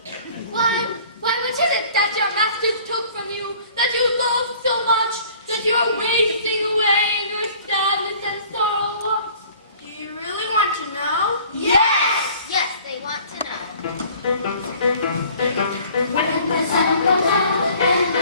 Why what is it that your masters took from you, that you love so much, that you are wasting away in your sadness and sorrow? Do you really want to know? Yes! Yes, they want to know. When the sun goes out and I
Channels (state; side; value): inverted; both; correlation -0.51